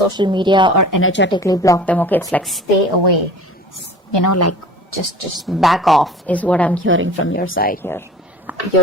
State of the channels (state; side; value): normal; both; correlation 0.42